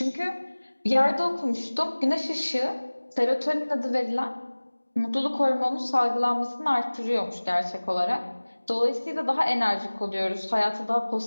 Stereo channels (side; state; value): both; inverted; correlation -1.00